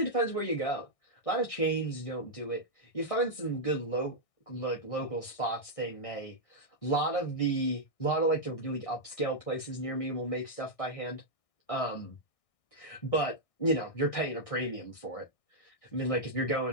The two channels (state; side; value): late; right; 1.6 ms